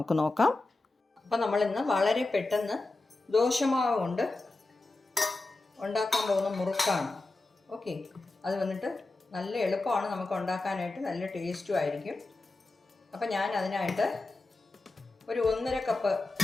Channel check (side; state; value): right; quieter; 3.2 dB